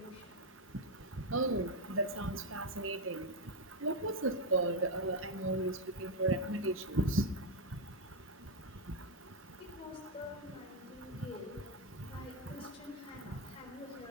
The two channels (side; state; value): both; normal; correlation 0.04